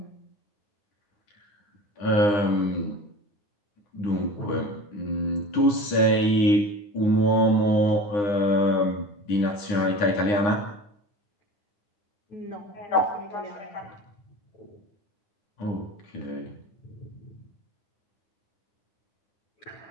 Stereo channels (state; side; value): late; right; 9.8 ms